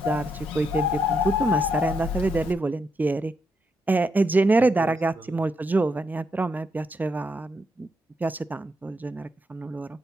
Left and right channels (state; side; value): normal; both; correlation 0.79